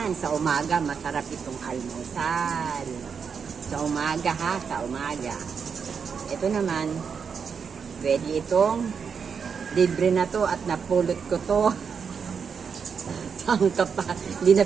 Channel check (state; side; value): quieter; left; 6.3 dB